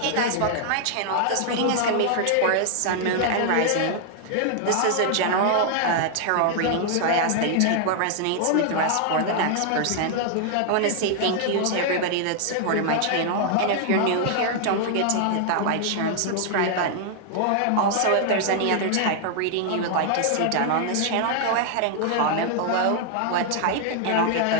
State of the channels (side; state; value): both; different; correlation 0.00